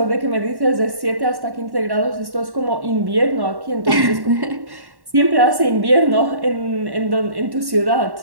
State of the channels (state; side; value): late; left; 1.1 ms